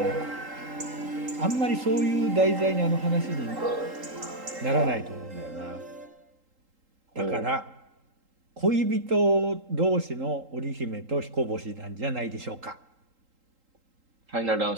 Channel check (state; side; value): late; left; 3.8 ms